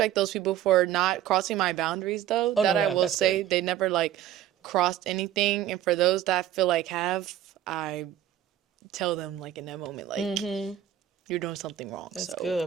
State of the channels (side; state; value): left; quieter; 11.6 dB